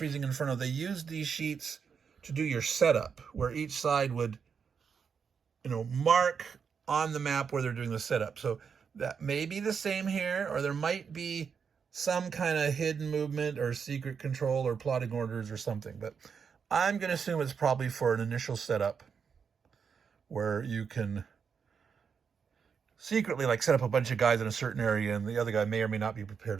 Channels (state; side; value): quieter; left; 6.4 dB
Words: Inferno, they used these sheets to do your setup, where each side would, you know, mark on the map where they're doing the setup. So that may be the same here, or there might be some kind of hidden movement or secret control or plotting orders or something. But I'm going to assume it's probably for an initial setup where you can secretly like set up a bunch of guys in a certain area and the other guy may or may not be